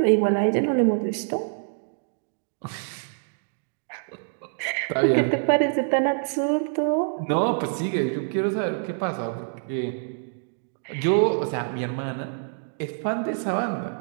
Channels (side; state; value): left; silent; digital silence